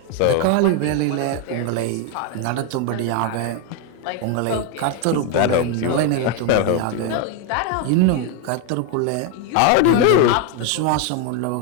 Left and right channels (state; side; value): different; both; correlation 0.01